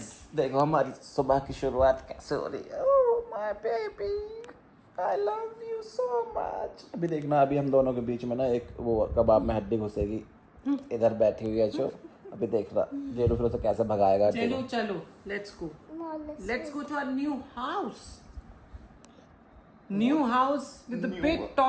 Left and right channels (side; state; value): both; identical; correlation 1.00